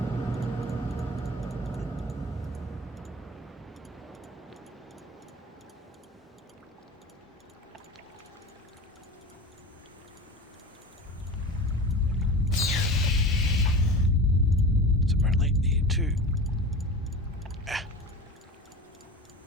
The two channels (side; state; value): both; normal; correlation 0.33